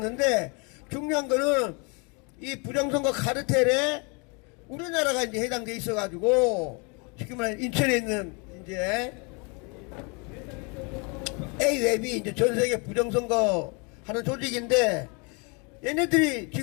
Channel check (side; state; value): right; quieter; 32.3 dB